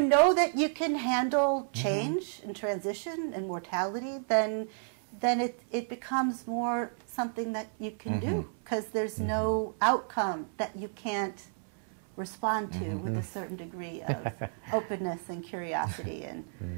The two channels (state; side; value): silent; left; 57 dB below the other